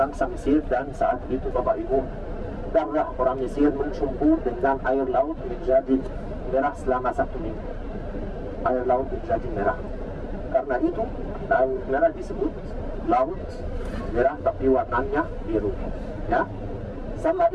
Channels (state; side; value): identical; both; correlation 1.00